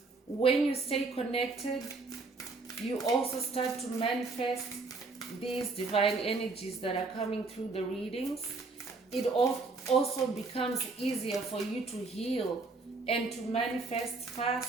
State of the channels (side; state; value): left; quieter; 3.8 dB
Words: When you stay connected, you also start to manifest these divine energies that are coming through the readings. It also becomes easier for you to heal and to manifest